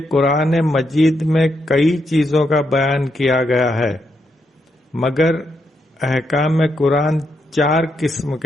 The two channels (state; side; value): normal; both; correlation 0.81